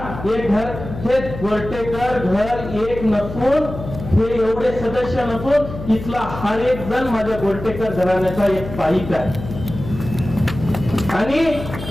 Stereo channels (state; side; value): noise; left; hum, 10 dB below the sound